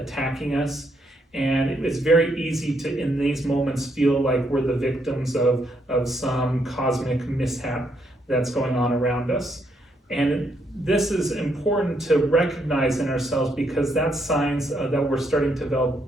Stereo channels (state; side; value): normal; both; correlation 0.75